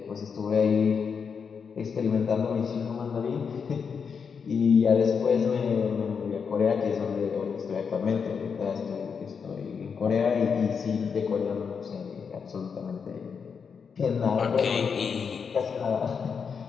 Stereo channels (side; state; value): right; quieter; 6.2 dB